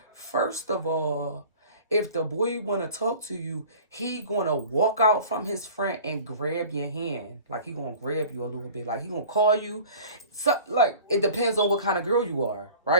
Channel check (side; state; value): both; inverted; correlation -0.44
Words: first of all, if the boy want to talk to you, he going to walk out from his friend and grab your hand. Like, he going to grab you a little bit. Like, he going to call you. So, like, it depends on what kind of girl you are,